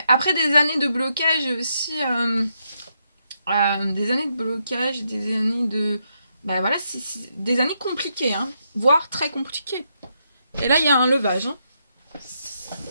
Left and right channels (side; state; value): both; inverted; correlation -0.80